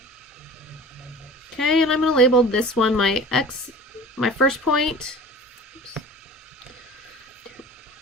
Okay, and I'm going to label this one my x, my first point. Oops.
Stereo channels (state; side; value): normal; both; correlation 0.41